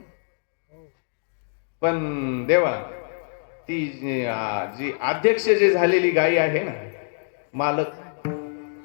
पण देवा ती जी अध्यक्ष जी झालेली गायी आहे ना, मालक,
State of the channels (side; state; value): right; silent; 62 dB below the other